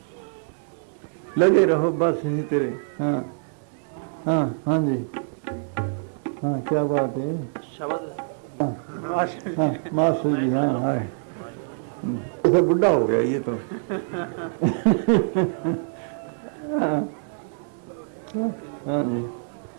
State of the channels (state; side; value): silent; left; digital silence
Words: लगे रहो बस इसी तरह। हाँ हाँ हाँ जी। हाँ, क्या बात है। हाँ मास्टर जी। हाँ हाँ, तो बुढ़ा हो गया ये तो। हाँ जी।